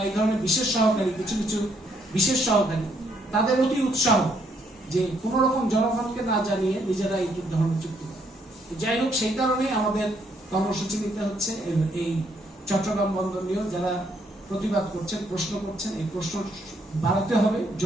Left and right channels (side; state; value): both; normal; correlation 0.71